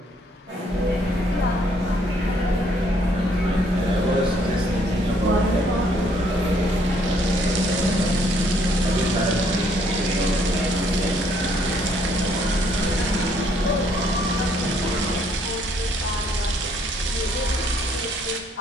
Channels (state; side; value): normal; both; correlation 0.67